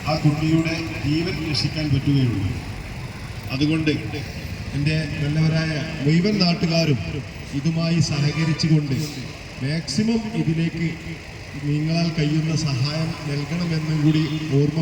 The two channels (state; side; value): identical; both; correlation 1.00